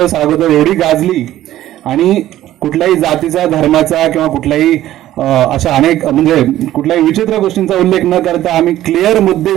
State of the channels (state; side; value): quieter; left; 13.7 dB